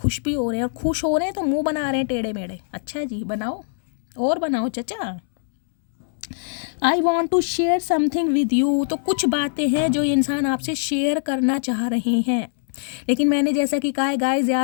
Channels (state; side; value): silent; right; 61 dB below the other